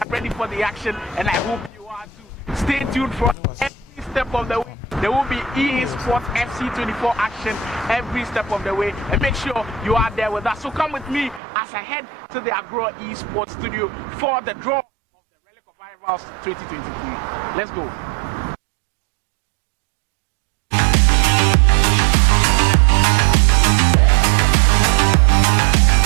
ready for the action, and I hope you are too. Stay tuned for every step of the way. There will be EA Sports FC24 action every step of the way, and make sure you are there with us. So come with me as I head to the Agoro Esports studio for the draw of Rivals 2023. Let's go.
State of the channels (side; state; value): left; drops out; at 11.4 s